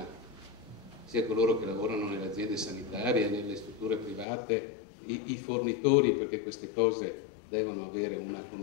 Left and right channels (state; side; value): drops out; right; at 4.2 s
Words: coloro che lavorano nelle aziende sanitarie, nelle strutture private, i fornitori, perché queste cose devono avere una